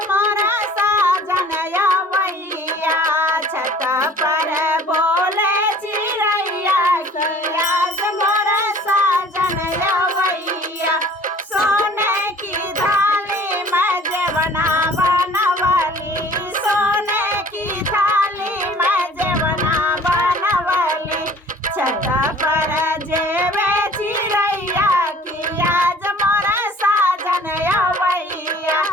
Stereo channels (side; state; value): both; normal; correlation 0.50